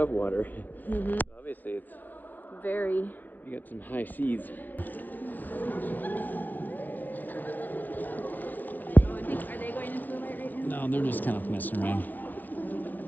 water. Mm-hmm. Obviously, it's Very. you got some high seas. Are they going into the light right now? No, they're just kind of messing around.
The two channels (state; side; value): late; right; 0.086 ms